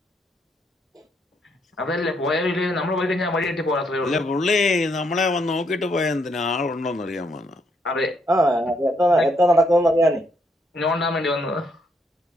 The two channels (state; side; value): normal; both; correlation 0.74